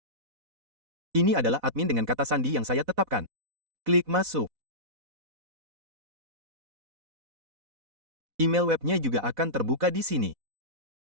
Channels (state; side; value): late; left; 4.0 ms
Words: Ini adalah admin dengan kata sandi yang saya tetapkan. Klik masuk. Email webnya juga akan terbuka di sini.